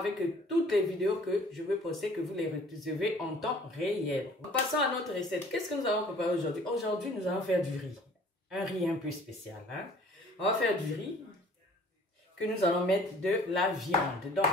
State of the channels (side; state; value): both; normal; correlation 0.52